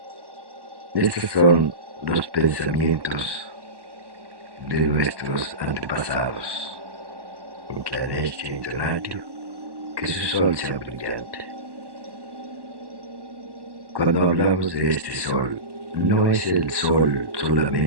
Estos son los pensamientos de nuestros antepasados. Inclanestia intonatio, que su sol sea brillante. Cuando hablamos de este sol, no es el sol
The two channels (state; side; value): late; left; 1.1 ms